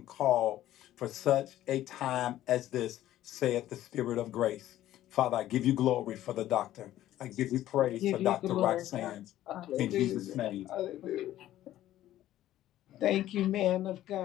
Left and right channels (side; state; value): right; quieter; 13.5 dB